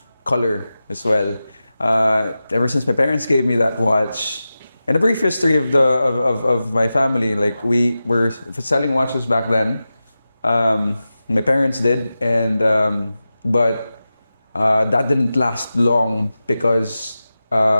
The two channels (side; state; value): both; inverted; correlation -0.94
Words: color as well. Ever since my parents gave me that watch. And a brief history of my family, like we were selling watches back then. My parents did, and but that didn't last long because